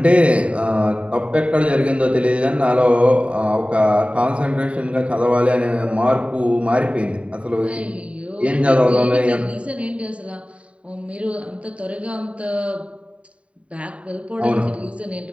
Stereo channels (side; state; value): left; late; 0.063 ms